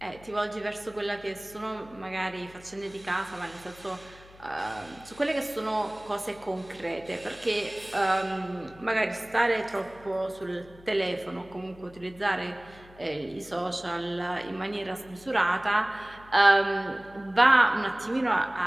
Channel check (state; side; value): noise; left; hum, 23 dB below the sound